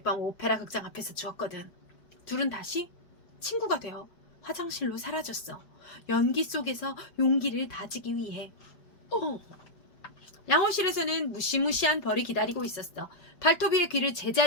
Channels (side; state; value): right; late; 5.0 ms